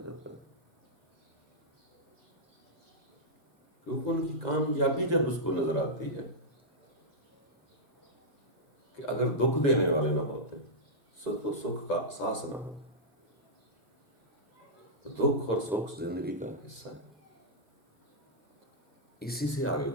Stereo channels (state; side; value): normal; both; correlation -0.09